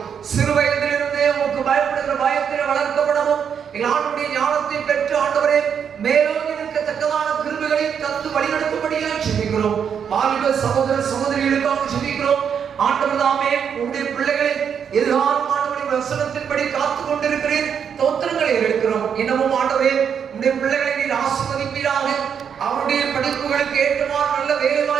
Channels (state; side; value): quieter; left; 7.6 dB